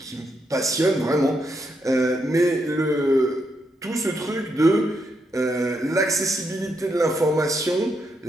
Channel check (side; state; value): both; normal; correlation 0.80